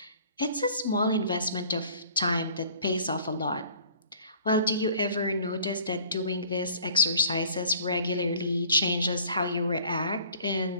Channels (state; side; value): inverted; both; correlation -0.52